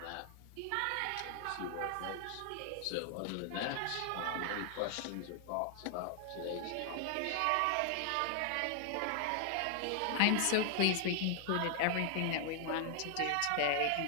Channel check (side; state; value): both; different; correlation 0.00